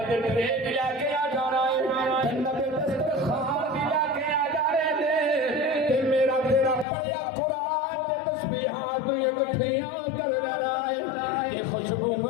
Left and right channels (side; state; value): right; drops out; at 6.9 s